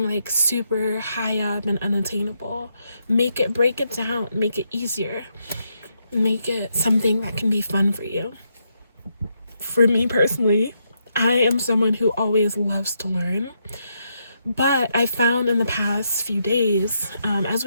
like super high up and unattainable. Break it down, make it easier, make it something that can be fun for you. For me personally, I am someone who always loves to learn, but I found in the past few days, as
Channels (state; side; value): inverted; both; correlation -0.80